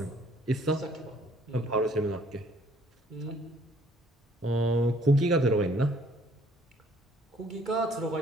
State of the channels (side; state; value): both; normal; correlation 0.60